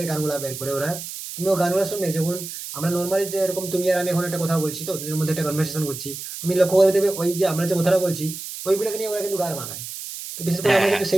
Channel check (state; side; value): noise; right; hiss, 9 dB below the sound